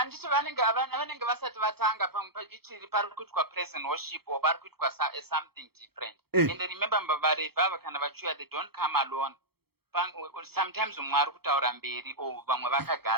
vanenge vasati vatanga ichiri pari kuitwa praise and worship or pari kuitwa something different. And remember vaRevhi ava kana vachiuya they don't come alone. Sometimes umwe ari kutaura mberi or vamwe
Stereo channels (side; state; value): left; late; 0.96 ms